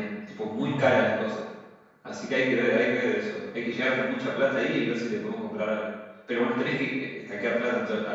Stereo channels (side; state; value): both; identical; correlation 1.00